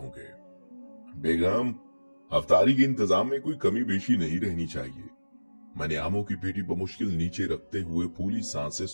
बेगम, अफ्तारी के इंतजाम में कोई कमी बेशी नहीं रहनी चाहिए। मैंने आमों की पेटी बमुश्किल नीचे रखते हुए फूली सांसें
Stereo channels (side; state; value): both; inverted; correlation -1.00